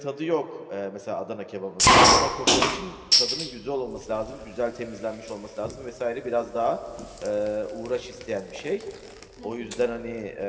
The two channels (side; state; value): both; identical; correlation 1.00